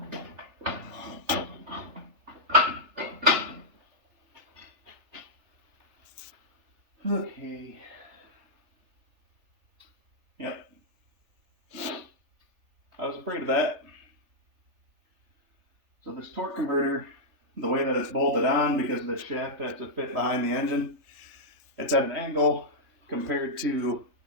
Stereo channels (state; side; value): late; left; 3.4 ms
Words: Okay. Yep. I was afraid of that. So this torque converter, the way that it's bolted on, because of the shaft has to fit behind the engine, it's at an angle compared to